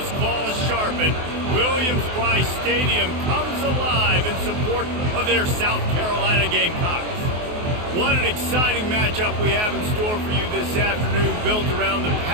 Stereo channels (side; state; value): left; late; 24 ms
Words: claws sharpened, Williams-Brice Stadium comes alive in support of their South Carolina Gamecocks. What an exciting matchup we have in store for you this afternoon, built around the